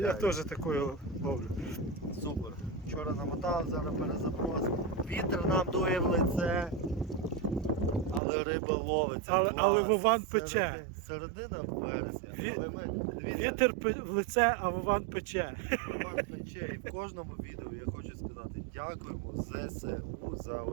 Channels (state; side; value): drops out; left; at 8.2 s